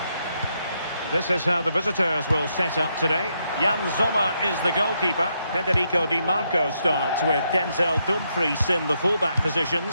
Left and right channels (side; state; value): both; inverted; correlation -0.79